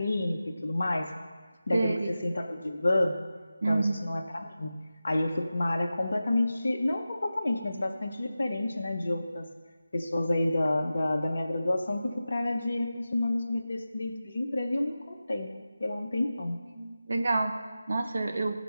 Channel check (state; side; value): inverted; both; correlation -0.94